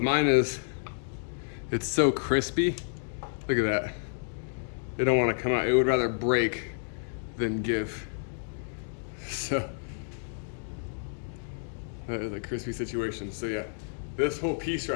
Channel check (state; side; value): silent; right; digital silence